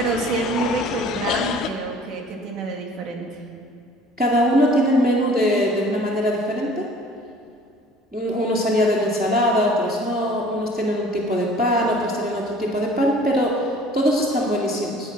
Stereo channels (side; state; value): both; normal; correlation 0.50